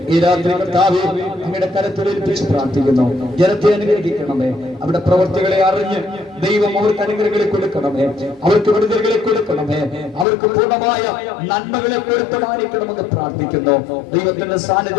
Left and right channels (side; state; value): right; drops out; at 10.2 s